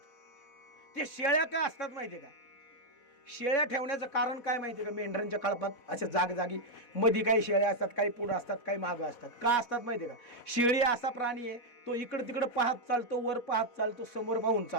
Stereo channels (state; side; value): late; right; 4.1 ms